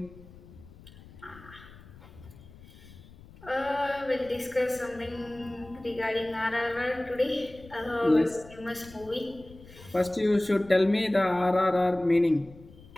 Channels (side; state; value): left; noise; rumble, 20 dB below the sound